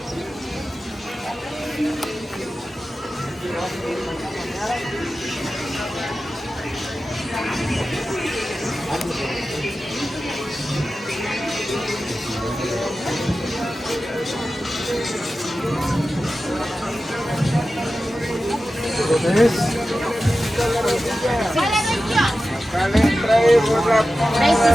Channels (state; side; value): normal; both; correlation 0.94